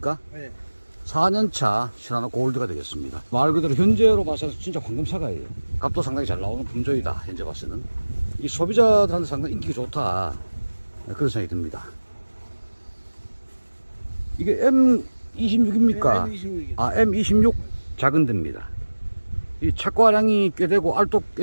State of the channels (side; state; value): both; inverted; correlation -1.00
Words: 네. 4년차 시나노 골드가 되겠습니다. 말 그대로 현재로 봐서 진짜 황금사과예요. 값도 상당히 잘 나오는 품종이다. 현재 봐서는 이 소비자들한테 상당히 인기가 좋다, 그런 생각이 듭니다. 이게 M26입니까? 네, M26이요. M26 작은 데입니다. 이 착과량이 꽤 되고 알도 꽤